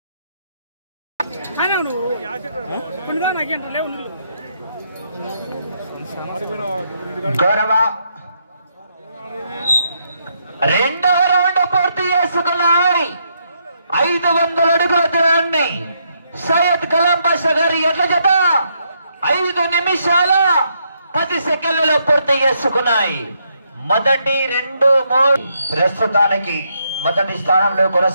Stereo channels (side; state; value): both; inverted; correlation -0.76